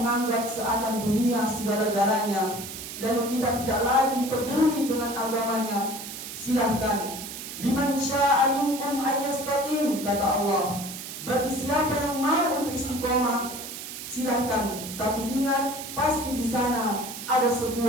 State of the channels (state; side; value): noise; right; hiss, 9 dB below the sound